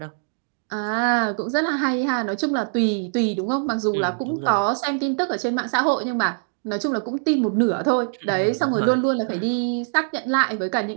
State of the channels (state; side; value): silent; left; digital silence